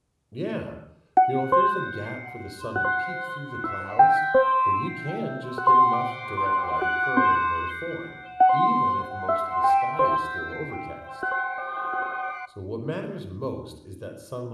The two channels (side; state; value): both; identical; correlation 1.00